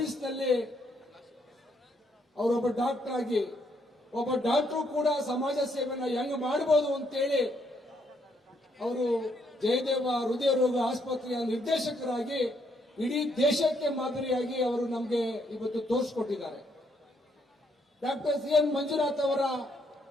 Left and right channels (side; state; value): both; normal; correlation 0.73